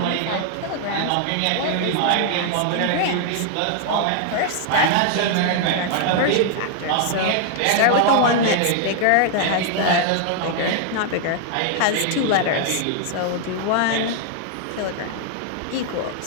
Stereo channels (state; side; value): different; both; correlation 0.00